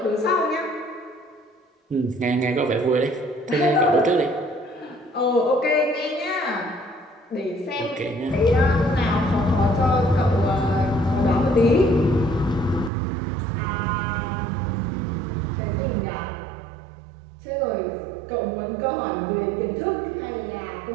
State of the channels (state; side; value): drops out; left; at 12.9 s